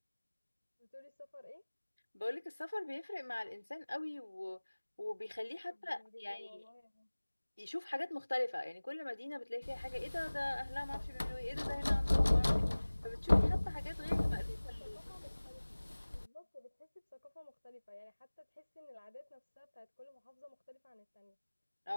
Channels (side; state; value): both; inverted; correlation -1.00